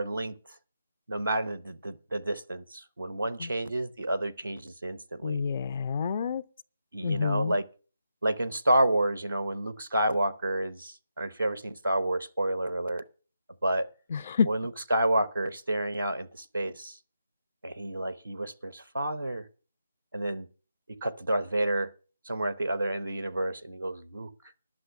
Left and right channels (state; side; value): inverted; both; correlation -0.85